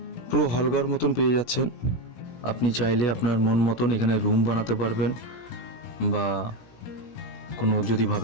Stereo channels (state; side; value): late; right; 17 ms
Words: পুরো হলঘর মতন পেয়ে যাচ্ছেন। আপনি চাইলে আপনার মন মতন এখানে রুম বানাতে পারবেন, বা কোনো যদি